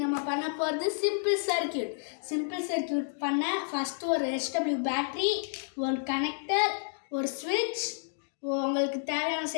நம்ம பண்ண போகிறது சிம்பிள் சர்க்கியூட் பண்ண ஃபஸ்ட்டு ஒரு HW பேட்ரி, ஒரு கனெக்டர், ஒரு ஸ்விட்ச், உங்களுக்கு தேவையான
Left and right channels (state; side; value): silent; right; digital silence